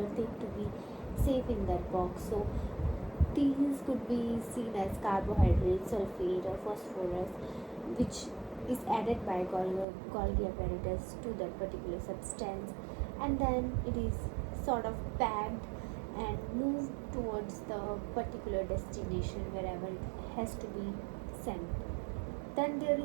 thing to be safe in that box. So these could be seen as carbohydrates, sulfate or phosphorus, which is added by Golgi apparatus to that particular substance, and then it is sort of packed and moved towards the particular destination wherever it has to be sent. Then there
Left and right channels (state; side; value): drops out; left; at 9.9 s